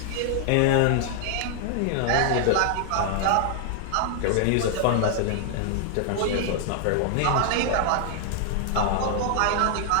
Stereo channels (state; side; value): different; both; correlation 0.00